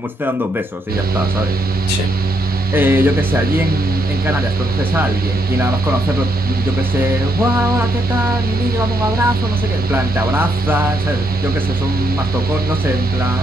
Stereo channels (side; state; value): both; normal; correlation 0.76